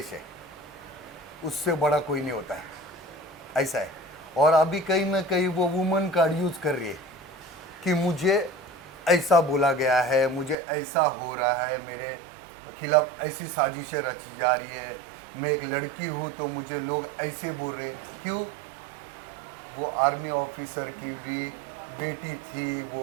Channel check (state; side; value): drops out; left; at 10.6 s